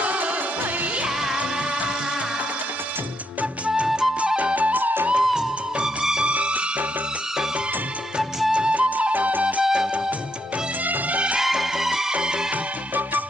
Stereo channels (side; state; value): both; normal; correlation 0.78